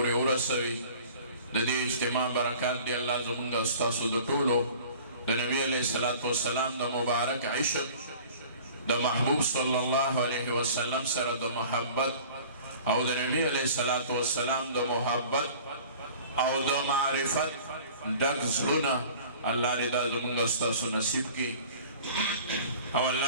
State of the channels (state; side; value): inverted; both; correlation -0.45